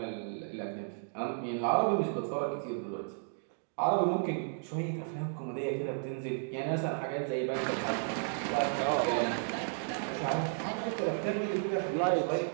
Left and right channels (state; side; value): silent; left; digital silence